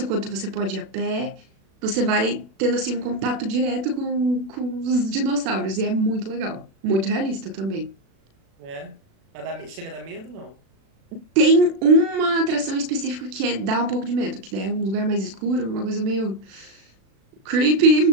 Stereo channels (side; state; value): left; late; 36 ms